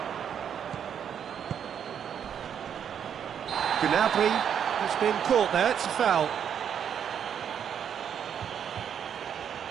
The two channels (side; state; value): left; quieter; 8.4 dB